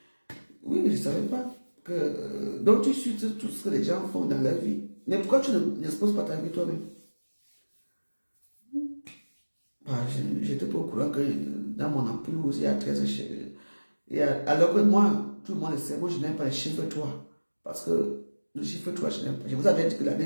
je ne savais pas que... donc, tu suis tout ce que les gens font dans leur vie. Mais pourquoi tu n'exposes pas ta vie toi-même? J'étais pas au courant que dans mon entourage, il y a 13 chiffres. Alors que moi, tout le monde le sait, moi je n'aime pas les chiffres 3. Parce que le chiffre 3, je n'aime pas. Je vous avais dit que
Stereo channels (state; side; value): inverted; both; correlation -1.00